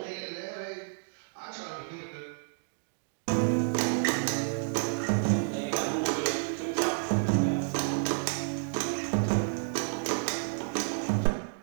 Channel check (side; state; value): left; silent; 57 dB below the other